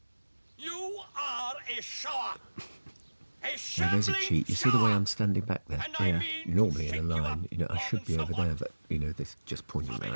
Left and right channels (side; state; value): both; inverted; correlation -1.00